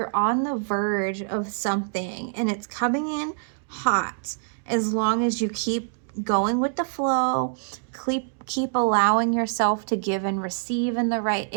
on the verge of something and it's coming in hot, as long as you keep going with the flow, keep allowing yourself to give and receive in the right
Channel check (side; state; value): left; silent; digital silence